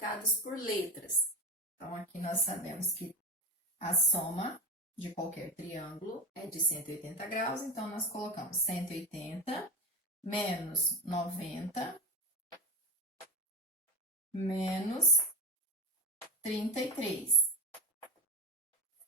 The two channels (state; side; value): normal; both; correlation 0.19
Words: por letras. Então, aqui nós sabemos que a soma de qualquer triângulo é de 180 graus, então nós colocamos 180 menos 90 menos 33.